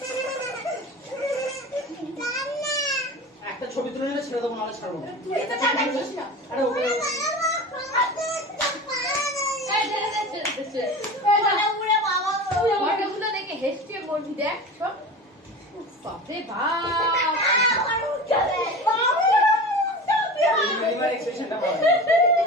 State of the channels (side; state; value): both; normal; correlation 0.32